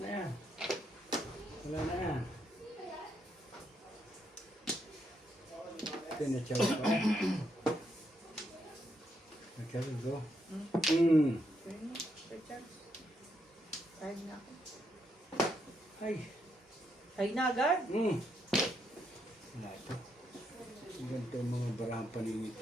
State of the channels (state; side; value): normal; both; correlation 0.78